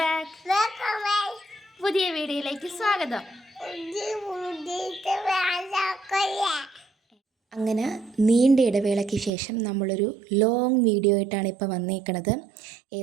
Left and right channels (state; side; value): drops out; left; at 9.3 s